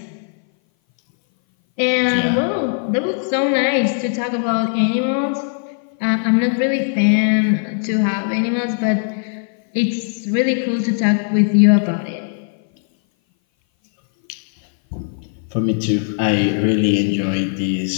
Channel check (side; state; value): right; silent; 59 dB below the other